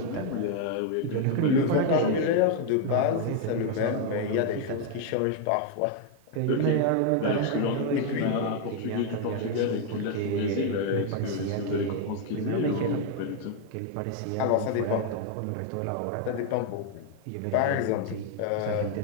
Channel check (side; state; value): both; different; correlation 0.00